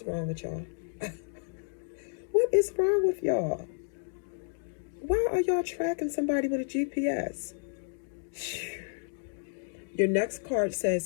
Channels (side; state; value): right; silent; digital silence